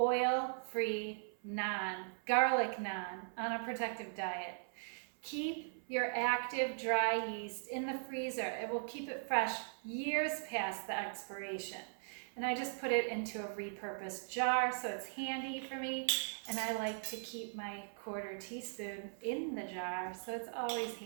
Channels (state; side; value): silent; left; 52 dB below the other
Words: naan, garlic naan on a protective diet. Keep your active dry yeast in the freezer. It will keep it fresh years past the expiration. And I just put it into a repurposed jar so it's handy for me, and I like to keep my 1/4 teaspoon in the jar so it's always